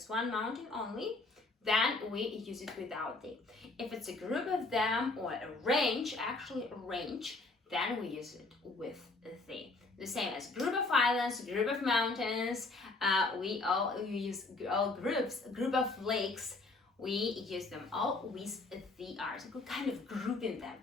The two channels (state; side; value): quieter; right; 3.4 dB